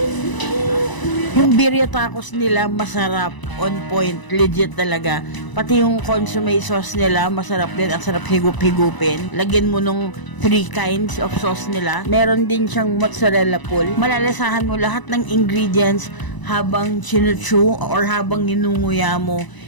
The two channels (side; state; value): right; late; 1.0 ms